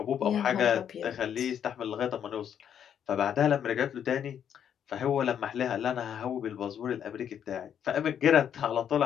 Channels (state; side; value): quieter; right; 8.9 dB